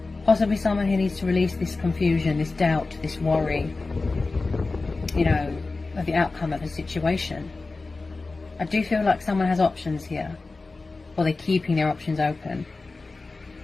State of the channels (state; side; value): quieter; right; 3.6 dB